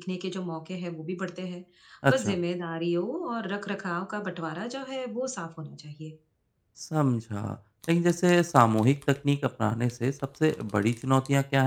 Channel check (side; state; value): both; identical; correlation 1.00